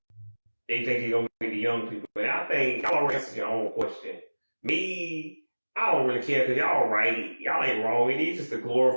they think it's gonna be the young people. And I think y'all already answered your own question. Me, I don't really care because y'all right. Y'all ain't wrong. It is just a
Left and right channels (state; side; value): inverted; both; correlation -1.00